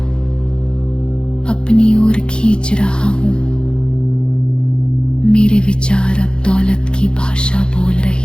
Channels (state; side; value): late; right; 0.051 ms